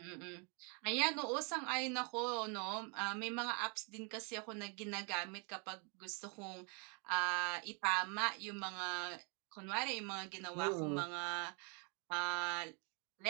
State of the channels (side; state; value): left; quieter; 35.7 dB